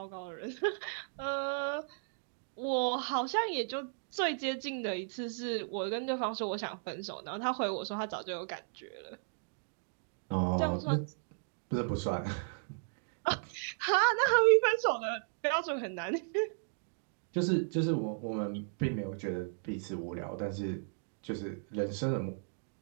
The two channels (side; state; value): left; silent; digital silence